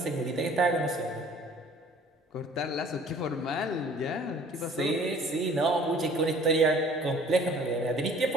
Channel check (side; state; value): both; normal; correlation 0.52